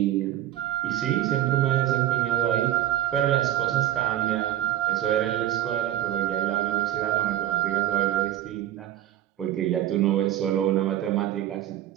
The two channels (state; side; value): quieter; left; 12.7 dB